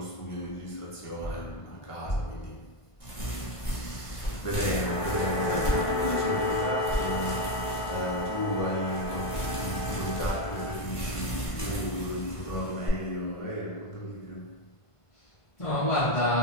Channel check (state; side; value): late; right; 1.5 ms